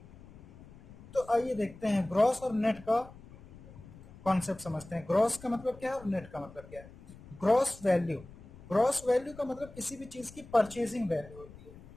तो आइए देखते हैं ग्रॉस और नेट का कॉन्सेप्ट समझते हैं। ग्रॉस का मतलब क्या है और नेट का मतलब क्या है? ग्रॉस वैल्यू, ग्रॉस वैल्यू का मतलब किसी भी चीज की परचेजिंग वैल्यू होती है।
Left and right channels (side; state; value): left; noise; rumble, 20 dB below the sound